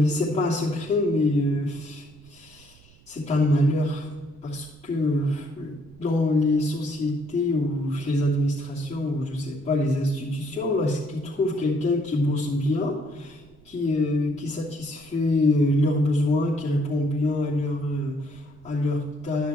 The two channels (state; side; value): noise; right; rumble, 26 dB below the sound